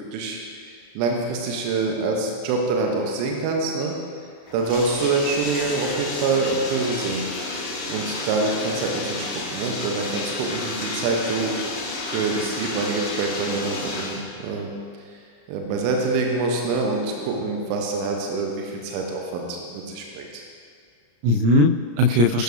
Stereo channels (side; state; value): left; late; 34 ms